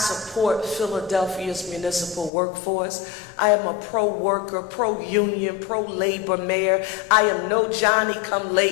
Philadelphia's municipal workforce. I am a pro-worker, pro-union, pro-labor mayor. I am no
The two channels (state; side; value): drops out; right; at 2.3 s